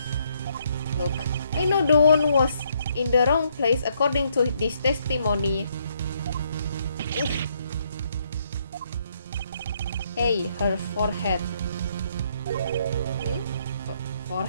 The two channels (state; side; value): inverted; both; correlation -0.72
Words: Look, I know the wound was in the wrong place according to this testimony. Hey, her forehead.